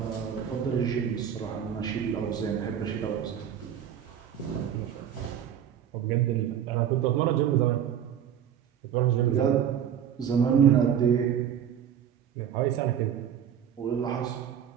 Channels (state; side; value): quieter; left; 9.2 dB